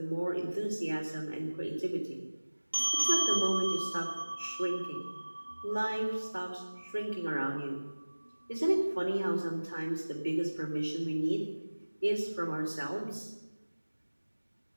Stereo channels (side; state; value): both; inverted; correlation -1.00